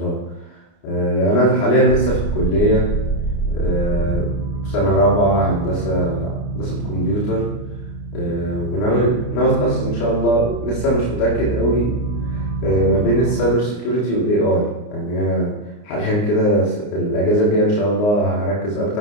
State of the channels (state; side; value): late; right; 29 ms